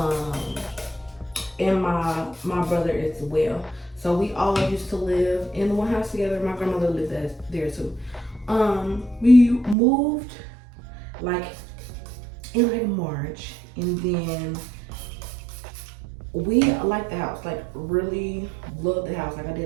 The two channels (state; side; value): drops out; left; at 9.8 s